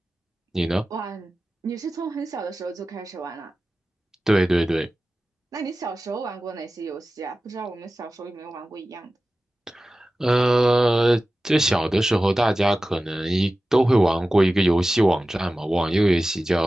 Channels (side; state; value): both; normal; correlation 0.95